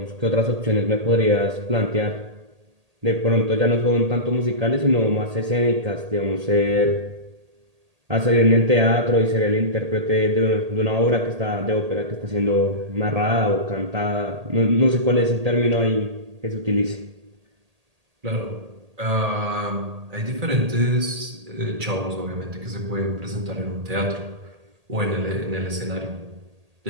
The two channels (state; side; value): late; left; 1.8 ms